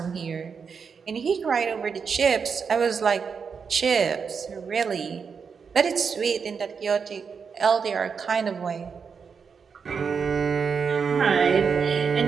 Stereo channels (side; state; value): left; quieter; 6.0 dB